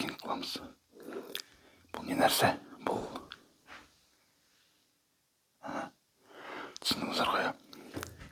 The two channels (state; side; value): identical; both; correlation 1.00